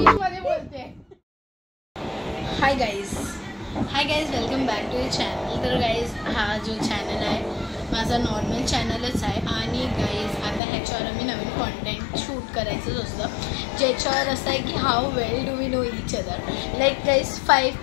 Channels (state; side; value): drops out; right; at 10.6 s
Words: मध्ये बोलते. Hi guys, welcome back to the channel. तर गाईज हा जो चॅनल आहे माझा नॉर्मल चॅनलच आहे आणि गाईज आता ह्याच्यावर आम्ही नवीन कॉन्टेंट शूट करायचंच असतं ज्याच्यावर असं आहे की how well do we know each other. Like guys 5